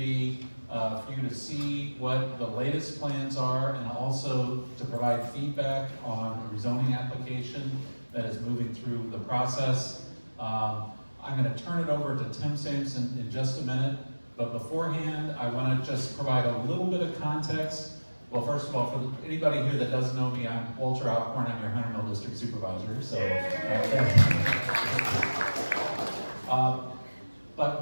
for you to see what the latest plans are and also to provide feedback on a rezoning application that is moving through the process. I'm going to turn it over to Tim Sampson in just a minute, but beforehand I want to just provide a little bit of context. Well, first of all, for anybody here that doesn't know me, I'm Walter Alcorn. I'm your Hunter Mill District Supervisor. So, but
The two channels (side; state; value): both; inverted; correlation -1.00